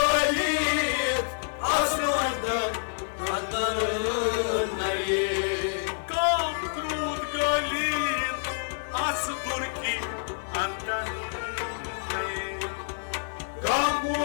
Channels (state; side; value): silent; right; 60 dB below the other